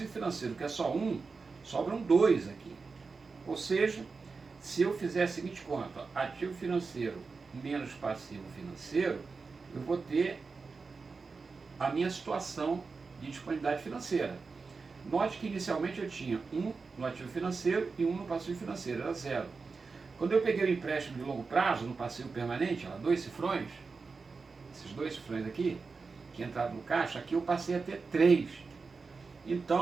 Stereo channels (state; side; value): quieter; left; 4.5 dB